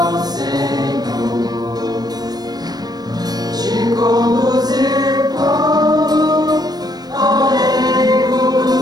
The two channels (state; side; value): late; left; 0.19 ms